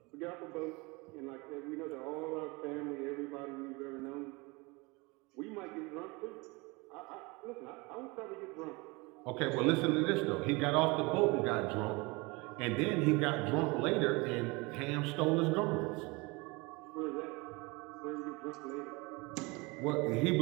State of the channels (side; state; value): left; quieter; 25.9 dB